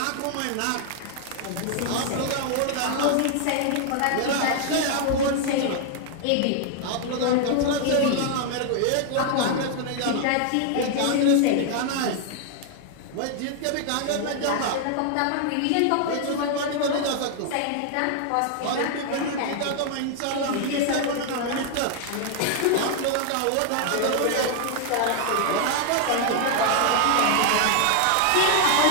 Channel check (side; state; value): both; different; correlation 0.00